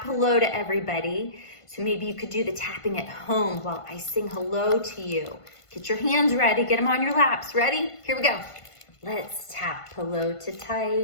hello to everybody. So maybe you could do the tapping at home while I sing hello to you. Get your hands ready. Get them on your laps. Ready? Here we go. Let's tap hello to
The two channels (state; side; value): late; right; 1.5 ms